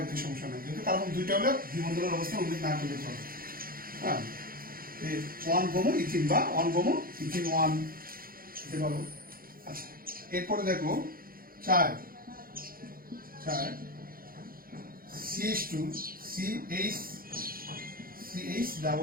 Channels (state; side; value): late; left; 0.42 ms